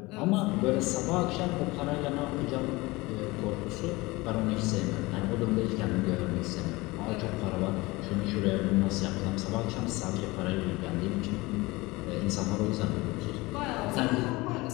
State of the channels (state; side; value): quieter; right; 22.1 dB